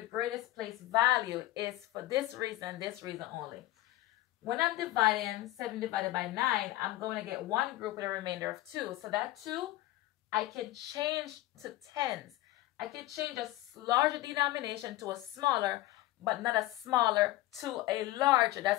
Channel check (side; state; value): right; quieter; 16.5 dB